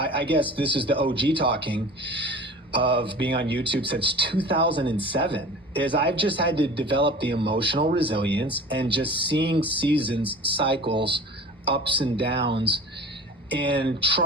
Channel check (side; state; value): both; normal; correlation 0.39